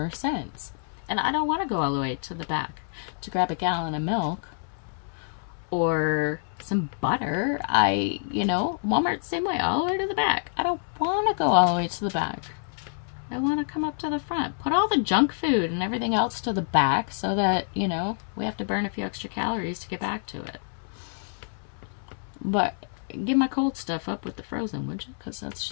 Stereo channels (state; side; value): silent; right; 60 dB below the other